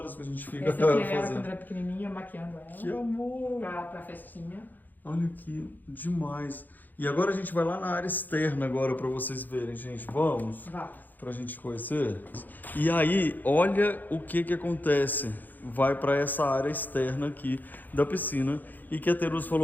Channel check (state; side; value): late; right; 0.085 ms